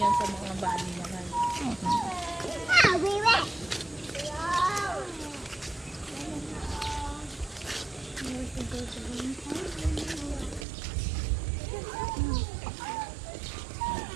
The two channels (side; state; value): left; drops out; at 10.7 s